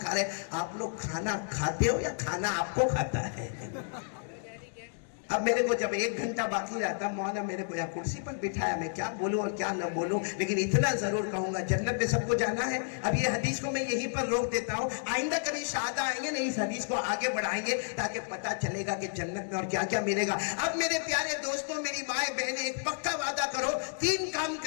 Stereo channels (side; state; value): right; silent; digital silence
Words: کھا رہے ہیں۔ آپ لوگ کھانا کھاتے ہو یا کھانا آپ کو کھاتا ہے؟ اب میرے کو جب 1 گھنٹہ باقی رہتا، مولانا میرے کو یہاں کرسی پر بٹھایا، میں کیا بولوں اور کیا نہ بولوں، لیکن اتنا ضرور کہوں گا جنت میں سب کو جانا ہے۔ اب یہ حدیث کو میں یہیں پر روک دیتا ہوں، آئندہ کبھی شہادہ آئیں گے نہیں، اس حدیث کو آگے بڑھائیں گے تاکہ پتہ چلے گا کہ جنت میں اور کیا کیا ملے گا۔ اب میرے پیارے دوستوں، میری مائیں بہنیں، ایک پکا وعدہ کرو، 3 کام